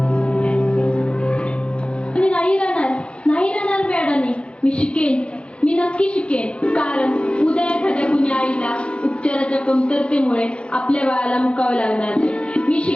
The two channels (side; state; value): right; late; 0.058 ms